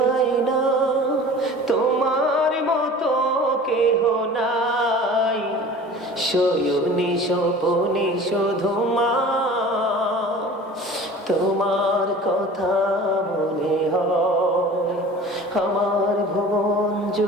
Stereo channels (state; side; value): normal; both; correlation 0.41